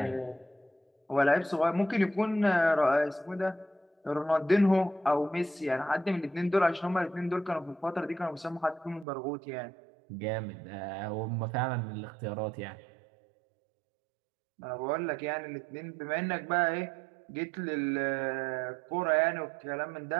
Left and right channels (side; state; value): left; drops out; at 9.1 s